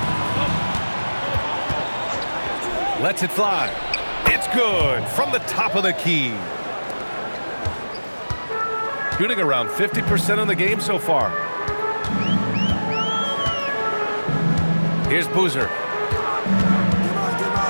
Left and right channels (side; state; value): both; inverted; correlation -1.00